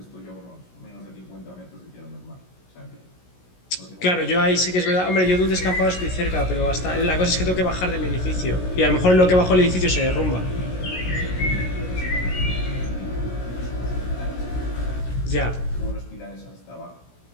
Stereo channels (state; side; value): late; right; 16 ms